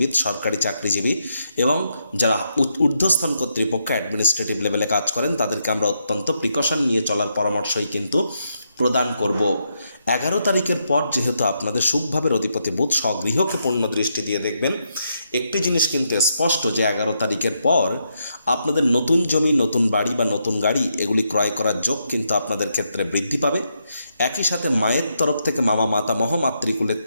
সরকারি চাকরিজীবী এবং যারা ঊর্ধ্বস্থান কর্তৃপক্ষ অ্যাডমিনিস্ট্রেটিভ লেভেলে কাজ করেন, তাদেরকে আমরা অত্যন্ত প্রিকশন নিয়ে চলার পরামর্শই কিন্তু প্রদান করব। 11 তারিখের পর যেহেতু আপনাদের সুখভাবের অধিপতি বুধ স্বগৃহকে পূর্ণ দৃষ্টি দিয়ে দেখবেন, একটি জিনিস কিন্তু স্পষ্ট যে 11 তারিখের পর আপনাদের নতুন জমি, নতুন বাড়ি বা নতুন গাড়ি এগুলি ক্রয় করার যোগ কিন্তু আপনাদের ক্ষেত্রে বৃদ্ধি পাবে। একই সাথে মায়ের তরফ থেকে, মামা মাতামহ মাতৃকুলের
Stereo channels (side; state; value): both; inverted; correlation -0.80